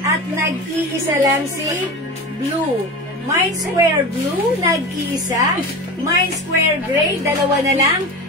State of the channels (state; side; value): normal; both; correlation 0.28